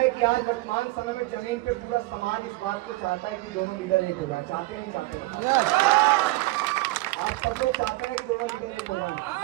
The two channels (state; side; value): quieter; left; 20.6 dB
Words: कि आज वर्तमान समय में जमीन पे पूरा समाज इस बात को चाहता है कि दोनों लीडर एक हो जाए। चाहते हैं नहीं चाहते हैं? आप सब लोग चाहते हैं कि दोनों लीडर एक हो जाए।